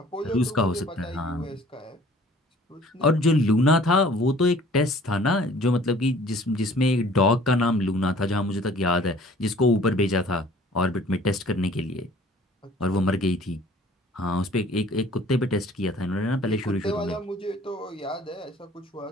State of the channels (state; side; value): normal; both; correlation 0.52